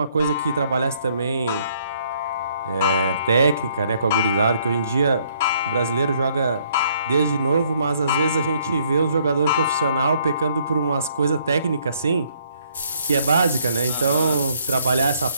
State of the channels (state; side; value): inverted; both; correlation -0.67